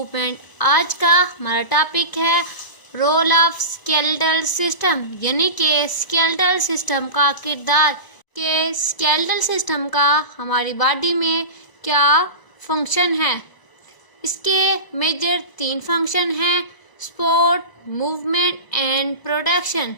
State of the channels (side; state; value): right; late; 1.0 ms